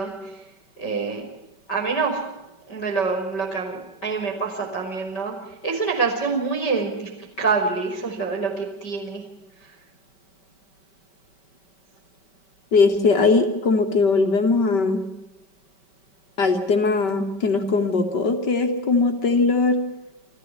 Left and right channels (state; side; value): late; right; 5.2 ms